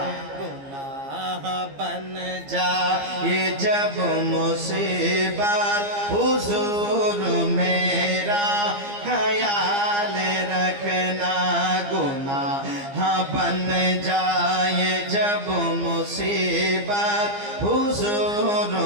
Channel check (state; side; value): late; left; 15 ms